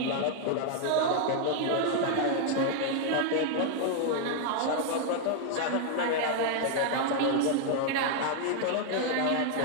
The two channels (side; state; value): both; different; correlation 0.00